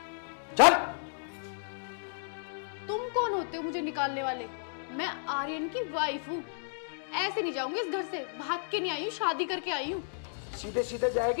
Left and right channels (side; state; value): right; silent; digital silence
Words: चल। तुम कौन होते हो मुझे निकालने वाले? मैं आर्यन की वाइफ हूँ। ऐसे नहीं जाऊंगी इस घर से, भाग के नहीं आई हूँ, शादी करके आई हूँ। सीधे सीधे